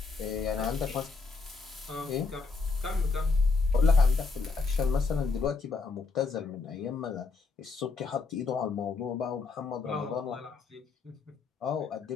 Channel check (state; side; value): quieter; right; 4.3 dB